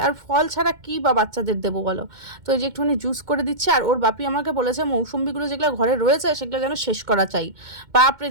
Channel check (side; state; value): left; late; 2.1 ms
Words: আর ফল ছাড়া কী বা বাচ্চাদের দেবো বলো। তো এই যে একটুখানি জুস করে দিচ্ছে। আর ওর বাপি আমাকে বলেছে মৌসুম্বিগুলো যেগুলো ঘরে রয়েছে সেগুলো যেন শেষ করা চাই। বাপরে